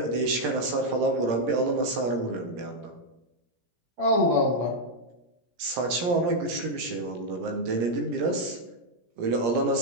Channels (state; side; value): late; left; 17 ms